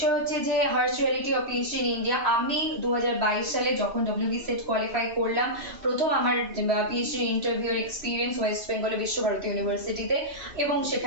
হচ্ছে যে harsh reality of PhD in India. আমি 2022 সালে যখন ডব্লিউবি সেট কোয়ালিফাই করলাম, প্রথম আমার পিএইচডি ইন্টারভিউর এক্সপিরিয়েন্স ওয়েস্ট বেঙ্গলের বিশ্বভারতী ইউনিভার্সিটিতে, এবং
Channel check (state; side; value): late; left; 3.1 ms